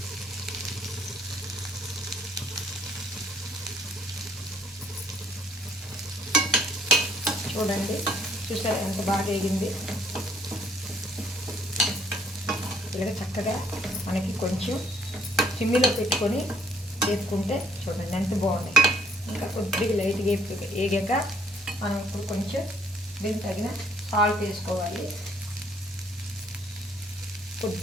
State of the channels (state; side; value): normal; both; correlation 0.65